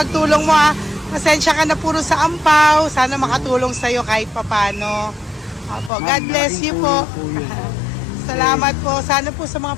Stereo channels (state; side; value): drops out; right; at 5.9 s